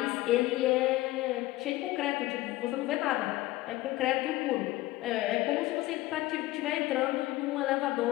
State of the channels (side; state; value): right; quieter; 17.7 dB